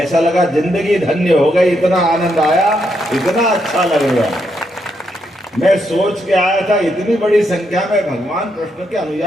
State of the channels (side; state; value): both; normal; correlation 0.79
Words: लगा जिंदगी धन्य हो गई, इतना आनंद आया, इतना अच्छा लग रहा। मैं सोच के आया था इतनी बड़ी संख्या में भगवान कृष्ण के